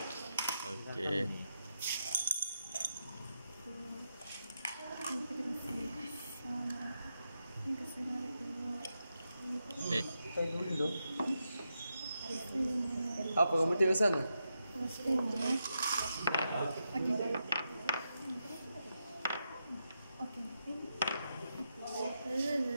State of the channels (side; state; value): both; inverted; correlation -0.85